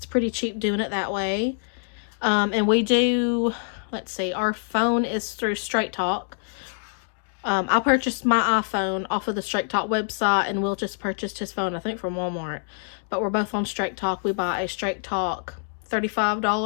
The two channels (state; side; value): silent; right; digital silence